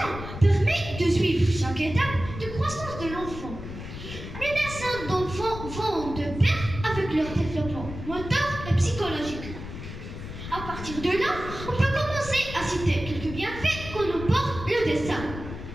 permet de suivre chaque étape de croissance de l'enfant. Les dessins d'enfants vont de pair avec leur développement moteur et psychologique. À partir de là, on peut commencer à citer quelques bienfaits qu'on apporte le dessin.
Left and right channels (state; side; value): noise; left; rumble, 10 dB below the sound